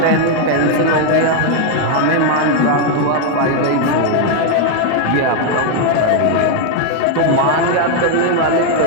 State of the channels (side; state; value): both; different; correlation 0.01